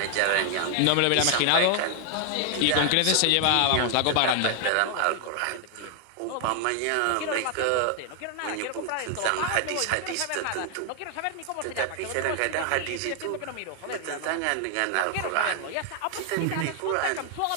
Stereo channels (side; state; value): both; different; correlation 0.00